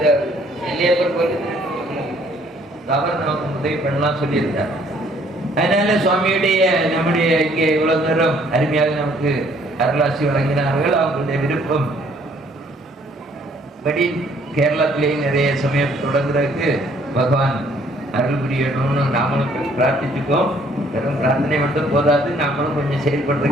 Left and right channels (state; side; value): normal; both; correlation 0.62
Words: நெல்லியப்பர் கோயில் அவர் நமக்கு உதவி பண்ணலாம் சொல்லியிருக்கார். அதனால சுவாமியுடைய நம்முடைய இங்கே இவ்வளவு நேரம் அருமையாக நமக்கு அருளாசி வழங்கினார்கள். அவங்களுடைய விருப்பம் படி கேரளத்திலேயும் நிறைய சமயம் தொடங்குறதுக்கு பகவான் அருள் புரியணும்னு நாமளும் பிரார்த்திச்சுக்கோம். வெறும் பிரார்த்தனை மட்டும் போதாது, நாமளும் கொஞ்சம்